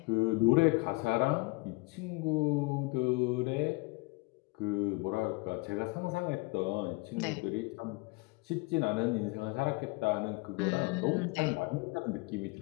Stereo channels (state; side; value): quieter; right; 25.5 dB